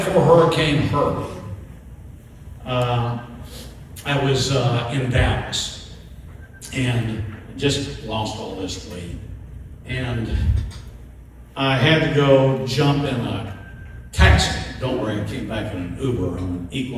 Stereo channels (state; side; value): identical; both; correlation 1.00